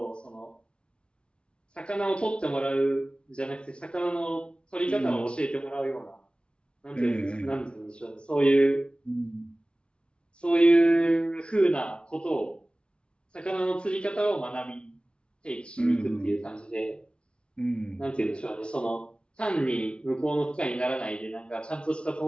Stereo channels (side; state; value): right; late; 0.057 ms